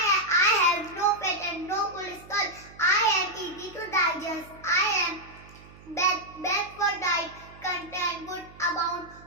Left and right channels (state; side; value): noise; right; hum, 21 dB below the sound